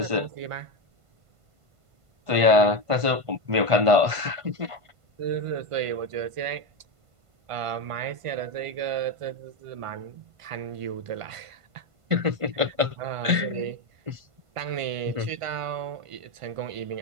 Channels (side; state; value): left; late; 1.5 ms